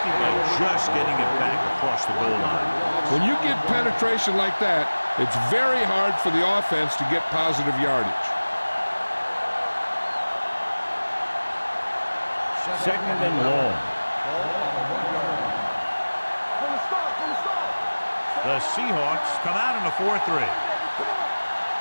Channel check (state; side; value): inverted; both; correlation -1.00